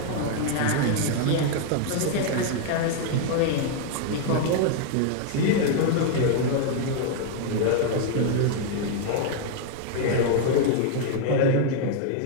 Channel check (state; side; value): different; both; correlation 0.00